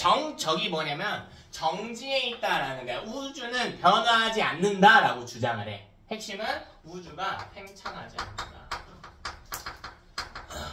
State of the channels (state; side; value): identical; both; correlation 1.00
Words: 저기 뭐냐면 정지에 있다라는 거야. 우주는 변화하지 않는다라고 주장을 해. 핵심은 우주가 팽창하지 않는다.